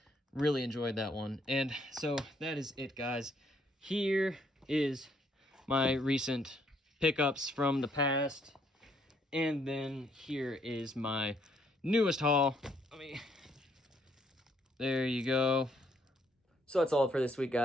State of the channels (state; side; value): normal; both; correlation 0.69